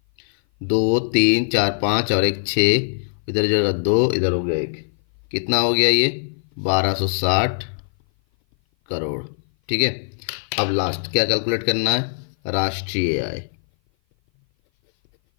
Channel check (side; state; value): right; silent; 57 dB below the other